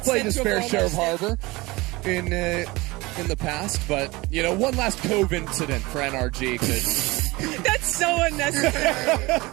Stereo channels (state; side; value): quieter; left; 22.2 dB